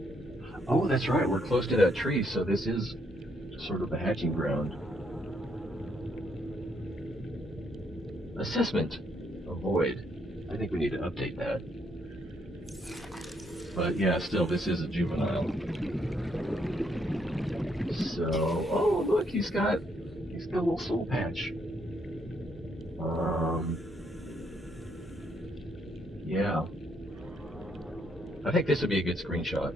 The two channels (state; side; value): normal; both; correlation 0.73